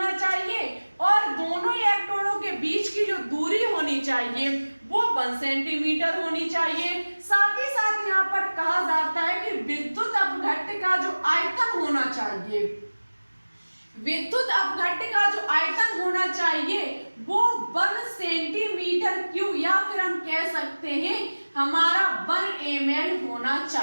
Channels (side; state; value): both; inverted; correlation -1.00